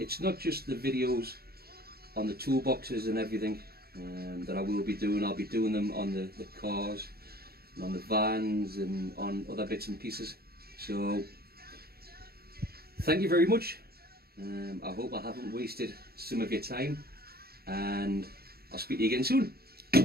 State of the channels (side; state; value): left; late; 0.45 ms